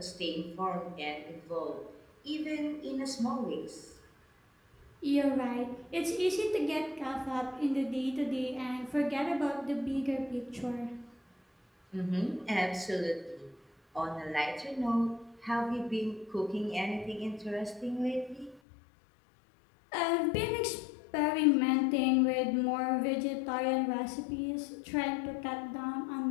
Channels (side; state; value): right; drops out; at 18.6 s